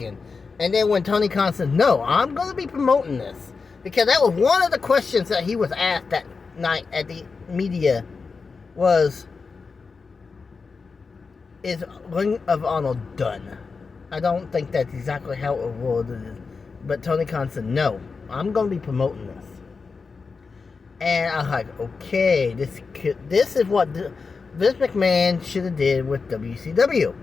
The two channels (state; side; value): quieter; right; 4.8 dB